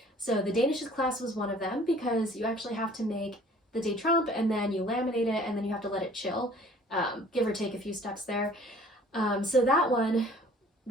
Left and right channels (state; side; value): normal; both; correlation 0.52